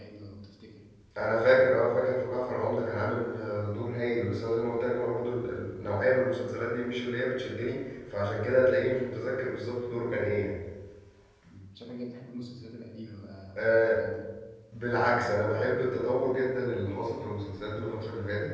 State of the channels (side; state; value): both; identical; correlation 1.00